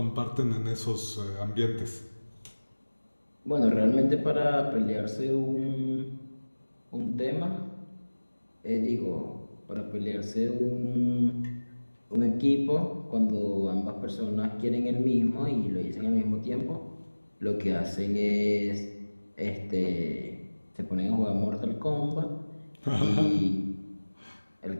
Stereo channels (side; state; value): both; inverted; correlation -1.00